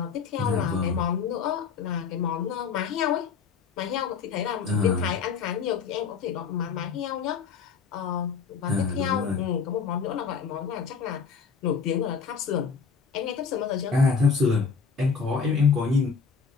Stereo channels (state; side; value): quieter; right; 5.8 dB